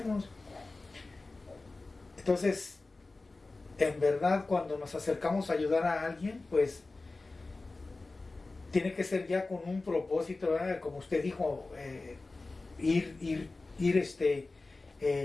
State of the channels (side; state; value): right; quieter; 3.4 dB